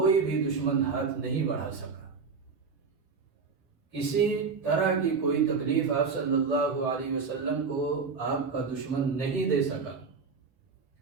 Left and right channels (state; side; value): quieter; left; 5.1 dB